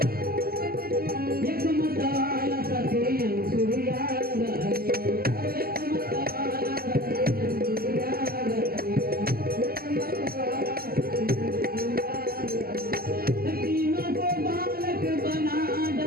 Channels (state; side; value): late; left; 0.44 ms